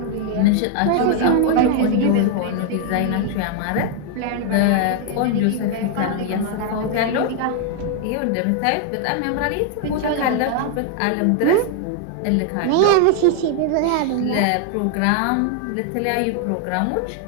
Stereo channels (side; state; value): both; different; correlation 0.00